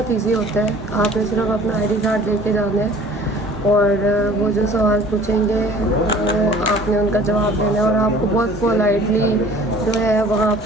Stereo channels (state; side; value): normal; both; correlation 0.49